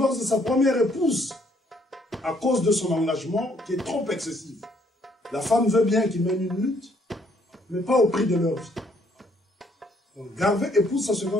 de sa première épouse à cause de son engagement qui est trop excessif. La femme veut bien qu'il mène une lutte, mais pas au prix de leur vie. Donc Garvey épouse sa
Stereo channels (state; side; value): normal; both; correlation 0.67